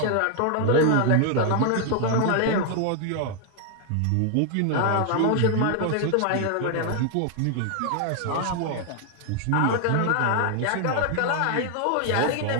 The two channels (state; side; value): different; both; correlation 0.00